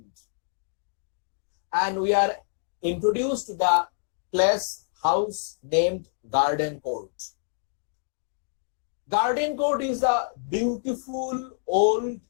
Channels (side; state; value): right; silent; digital silence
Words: and we are introduced to the place house named Garden Court. Garden Court is a beautiful old